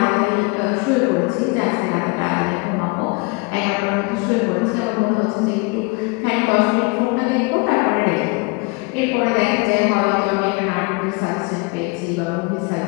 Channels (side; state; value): right; quieter; 28.5 dB